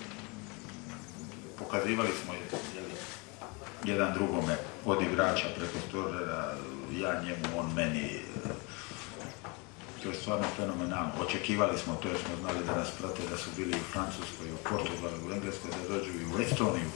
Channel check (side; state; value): right; quieter; 29.8 dB